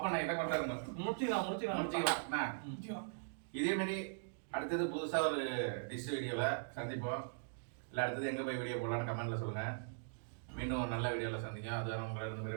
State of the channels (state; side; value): silent; left; digital silence